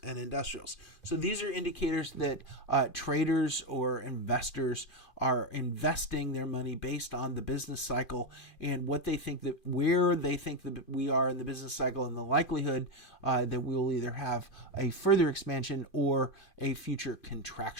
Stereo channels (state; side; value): late; right; 2.4 ms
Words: and industrials. So these are indicators that traders or investors are investing their money based on the business cycle and what they think, that where they think that we are in the business cycle, and the likelihood that we will either have a further expansion or a future